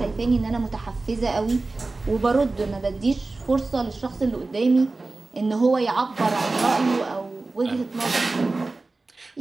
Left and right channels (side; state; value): left; quieter; 3.4 dB